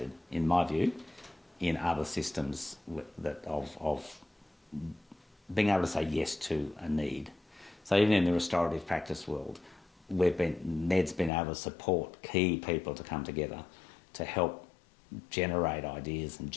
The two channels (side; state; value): right; drops out; at 11.3 s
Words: in my view, in other systems of being able to say yes to a need. So even in the restorative practice world, NED's been able to support key people to come together to help generate ideas and